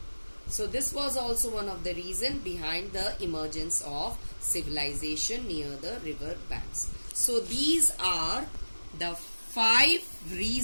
So this was also one of the reasons behind the emergence of civilization near the river banks. So these are the 5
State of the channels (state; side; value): inverted; both; correlation -1.00